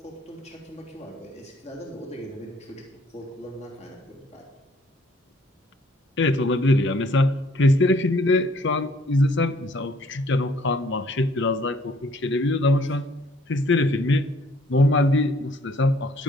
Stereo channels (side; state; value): both; normal; correlation 0.61